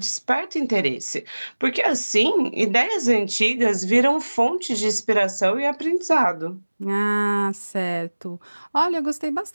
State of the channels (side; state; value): both; inverted; correlation -1.00